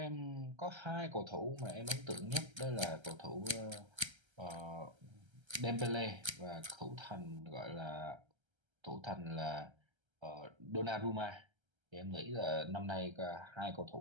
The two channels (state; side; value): late; left; 1.3 ms